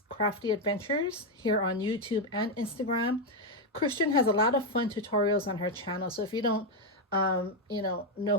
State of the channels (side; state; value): both; normal; correlation 0.04